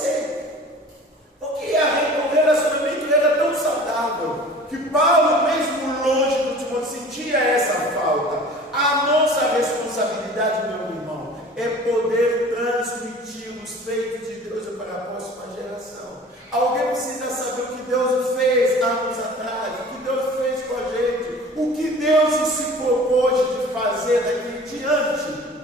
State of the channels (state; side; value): normal; both; correlation 0.43